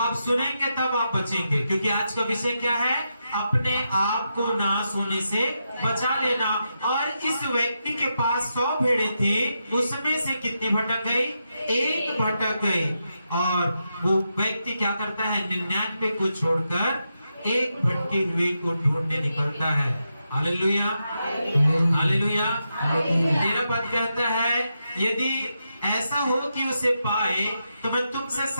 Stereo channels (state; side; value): inverted; both; correlation -0.85